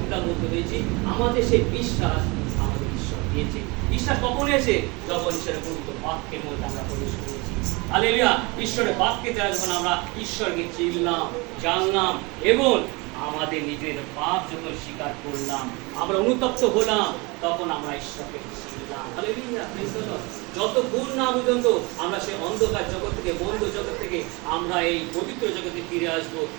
মধ্যে রয়েছি। আমাদের সেই বিশ্বাস আমাদের ঈশ্বর দিয়েছে। বিশ্বাস কখন এসে? যখন ঈশ্বরের পবিত্র বাক্যের মধ্যে আমরা প্রবেশ করেছি। হালেলুয়া। ঈশ্বরের বাক্যে দ্বারা যখন আমরা ঈশ্বরকে চিনলাম, জানলাম এবং আমাদের নিজের পাপ যখন স্বীকার করলাম, আমরা অনুতপ্ত হলাম, তখন আমরা ঈশ্বরকে চিনলাম। Hallelujah, praise the Lord. যতক্ষণ না পর্যন্ত আমরা সেই অন্ধকার জগৎ থেকে, বন্ধ জগৎ থেকে আমরা এই পবিত্র জগতে ফিরে আসবো,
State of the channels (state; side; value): quieter; left; 26.6 dB